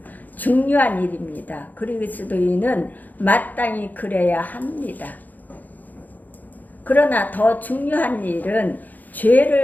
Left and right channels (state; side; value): late; right; 0.083 ms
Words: 중요한 일입니다. 그리스도인은 마땅히 그래야 합니다. 그러나 더 중요한 일은